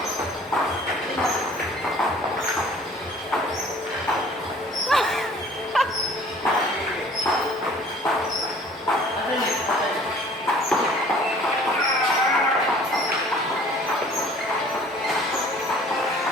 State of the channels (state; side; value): normal; both; correlation 0.51